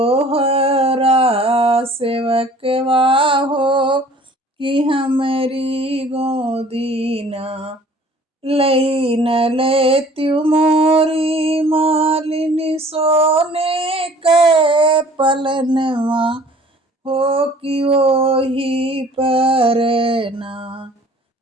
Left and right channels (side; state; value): both; normal; correlation 0.51